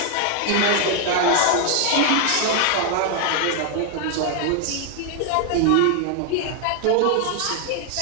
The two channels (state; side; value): different; both; correlation 0.00